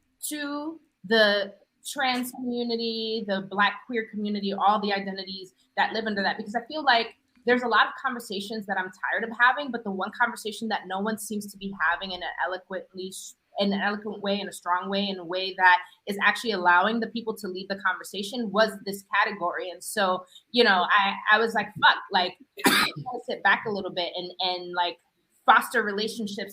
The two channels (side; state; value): both; identical; correlation 1.00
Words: to the trans community, the Black queer community, all the identities that live under that. Because I feel like there's a lot of conversations that I'm tired of having, but the one conversation that no one seems to be having in an eloquent way, in a strong way, in a way that is actually allowing the people to lead the conversation was this category. And so, I was like, fuck, like, I want to sit back a little bit and like foster